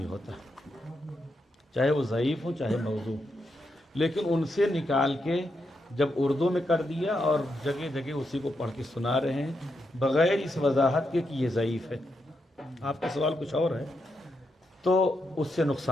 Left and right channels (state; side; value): normal; both; correlation 0.83